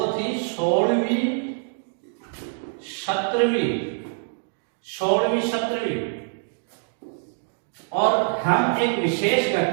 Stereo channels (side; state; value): left; silent; digital silence